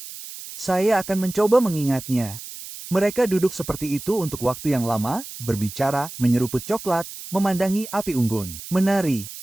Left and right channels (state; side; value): noise; right; hiss, 12 dB below the sound